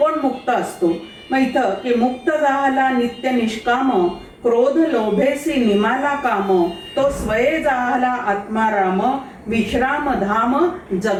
मुक्त असतो. मग इथं की मुक्त जाहला नित्य निष्काम, क्रोध लोभेसी निमाला काम, तो स्वये जाहला आत्माराम, विश्राम धाम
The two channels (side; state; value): both; identical; correlation 1.00